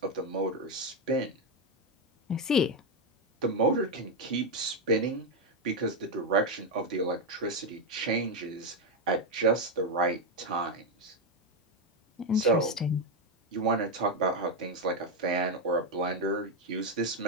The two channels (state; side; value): normal; both; correlation 0.05